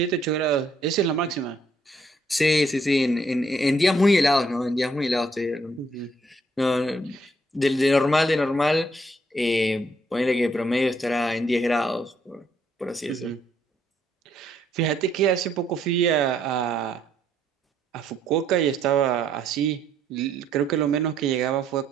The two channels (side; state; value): both; normal; correlation 0.69